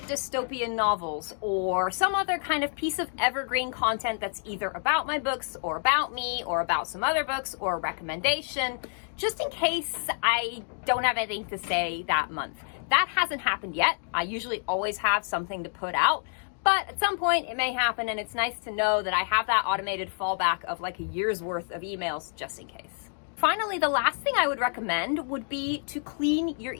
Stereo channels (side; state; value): right; silent; 59 dB below the other